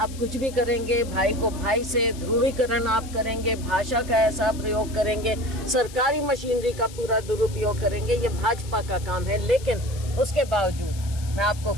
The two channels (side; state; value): left; noise; hiss, 17 dB below the sound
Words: कुछ भी करेंगे, भाई को भाई से ध्रुवीकरण आप करेंगे, भाषा का ऐसा प्रयोग करेंगे, सरकारी मशीनरी का पूरा दुरुपयोग करेंगे, ये भाजपा का काम है। लेकिन उसके बावजूद मैं आपको